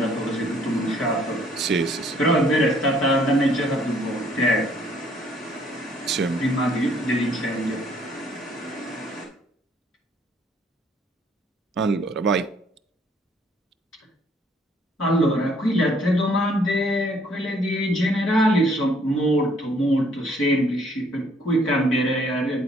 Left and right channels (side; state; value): both; normal; correlation 0.63